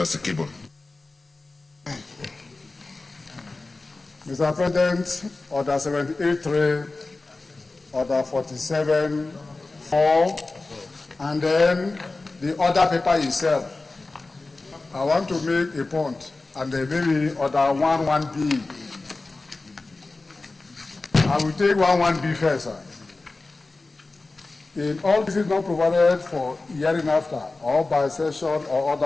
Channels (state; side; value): quieter; right; 3.4 dB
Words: Sikibo. Mr. President, Order 78.3, Order 47.4, and then the order paper itself. I want to make a point, and then maybe Order 11B. I will take 11B first, sir. In all cases not provided for hearing after, or by session or